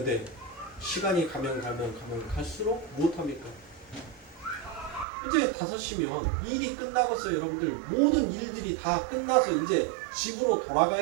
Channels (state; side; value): drops out; left; at 5.1 s